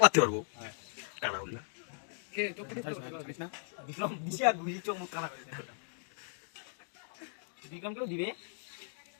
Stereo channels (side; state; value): right; silent; digital silence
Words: মারতে পারবো। কানা বললা। কে চোখ কেটে ছাড়িস না। বিক্রম দিশা ঘুরি চোখ মুখ কানা করে দেয়। বিক্রম কেউ দিবে?